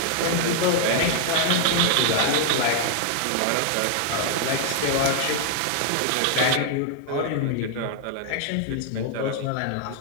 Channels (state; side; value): different; both; correlation 0.00